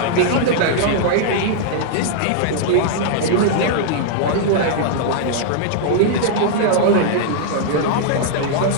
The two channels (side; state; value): both; different; correlation -0.01